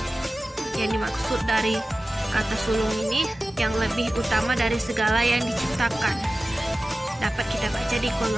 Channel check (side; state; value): both; normal; correlation 0.96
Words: Yang dimaksud dari kata sulung ini yang lebih utama dari segala yang diciptakan. Dapat kita baca di